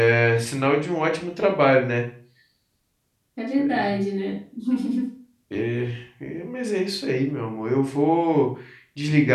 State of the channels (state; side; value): identical; both; correlation 1.00